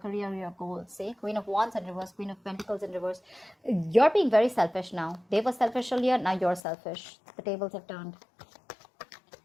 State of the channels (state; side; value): drops out; right; at 6.6 s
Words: your goals. See, Queen of Wands in reverse, Queen of Pentacles in reverse. You're being very selfish now. They were selfish earlier, now you're selfish. The tables have turned.